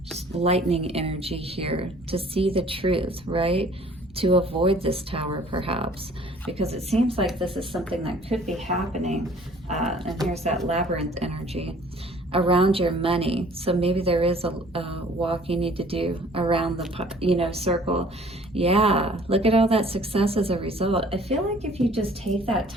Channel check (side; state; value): both; normal; correlation 0.54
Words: just lightning energy here to see the truth, right? To avoid this Tower, perhaps, because it seems like this is something that could be happening. And here's that labyrinth energy around your money. So maybe there is a walk you need to do around the, you know, circle. Yeah, look at all that success as a result. I feel like if you just take that